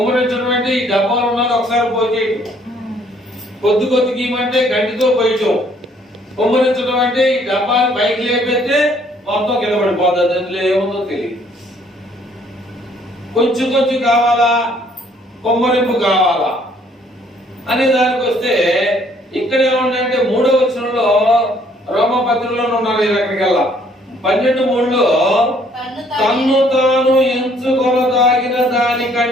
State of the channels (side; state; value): both; normal; correlation 0.63